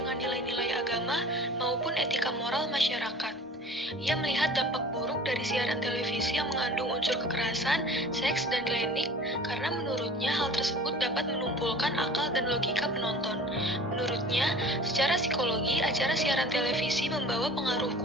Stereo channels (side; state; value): both; normal; correlation 0.44